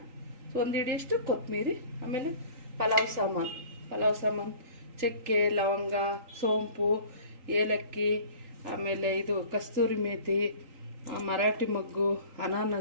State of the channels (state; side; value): late; left; 3.8 ms